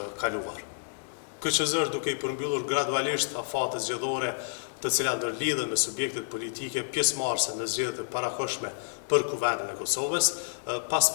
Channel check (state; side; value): silent; right; digital silence